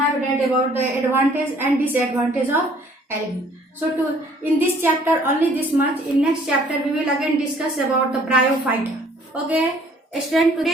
read about the advantage and disadvantage of algae. So in this chapter only this much. In next chapter we will again discuss about the bryophyte. Okay student,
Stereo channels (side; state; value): both; normal; correlation 0.58